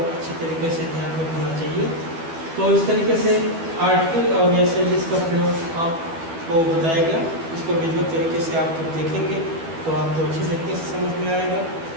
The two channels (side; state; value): left; late; 12 ms